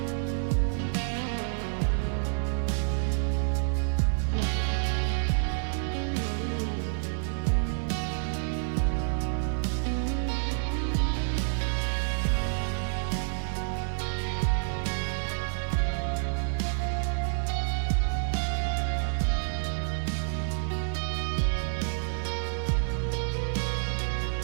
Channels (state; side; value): silent; left; 59 dB below the other